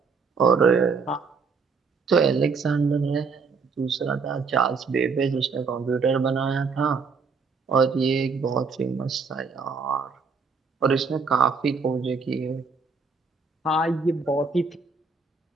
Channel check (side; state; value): left; quieter; 4.9 dB